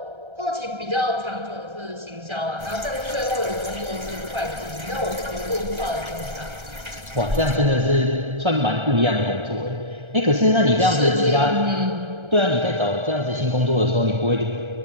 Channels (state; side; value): late; left; 1.3 ms